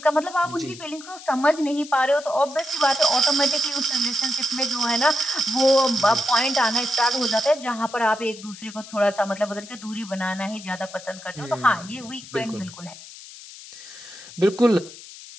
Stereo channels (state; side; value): noise; left; hiss, 16 dB below the sound